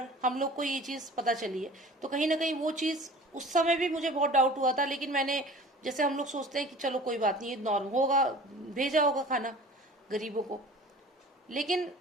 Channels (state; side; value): normal; both; correlation 0.43